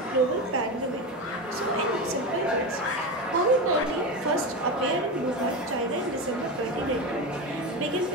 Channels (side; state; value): both; normal; correlation 0.20